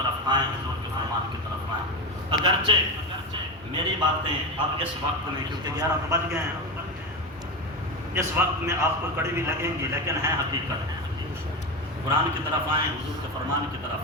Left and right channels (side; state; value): both; normal; correlation 0.18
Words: آئیں، حضور کے فرمان کی طرف آئیں۔ اگرچہ میری باتیں اب اس وقت میں، کیونکہ 11 تو بج گئے ہیں، اس وقت میں آپ کو کڑی بھی لگیں گی، لیکن ہے حقیقت۔ قرآن کی طرف آئیں، حضور کے فرمان کی